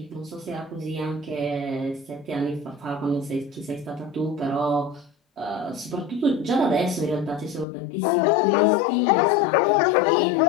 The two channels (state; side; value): drops out; right; at 7.7 s